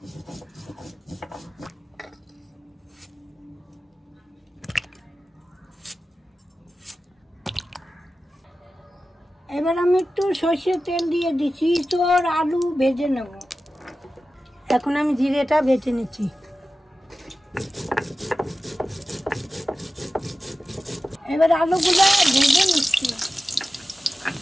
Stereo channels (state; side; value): normal; both; correlation 0.94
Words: এবার আমি একটু সর্ষের তেল দিয়ে দিচ্ছি, তোর আলু ভেজে নেব। এখন আমি জিরেটা বেটে নিচ্ছি। এবার আলুগুলো ভেজে নিচ্ছি।